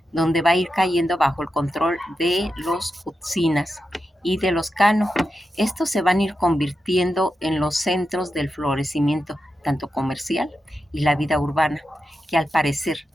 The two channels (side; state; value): both; normal; correlation 0.89